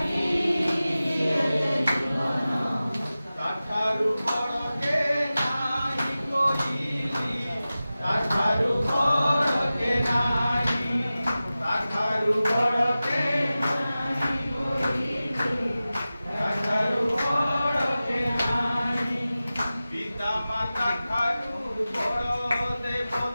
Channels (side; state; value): both; inverted; correlation -0.95